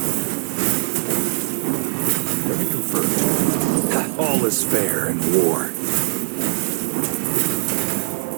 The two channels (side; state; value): left; silent; digital silence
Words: Confirmed. All is fair in war.